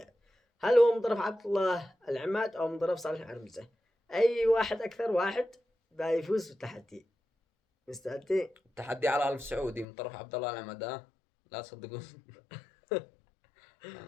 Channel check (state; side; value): drops out; right; at 9.9 s